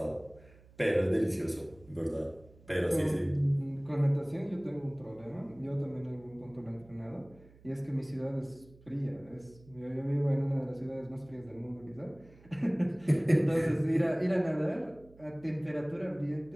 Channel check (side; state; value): right; noise; hum, 24 dB below the sound